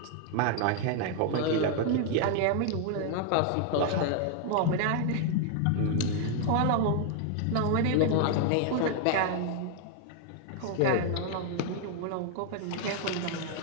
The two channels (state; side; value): different; both; correlation 0.00